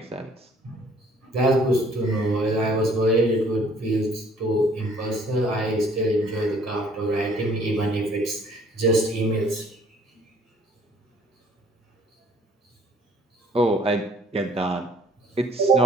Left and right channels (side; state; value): both; normal; correlation 0.59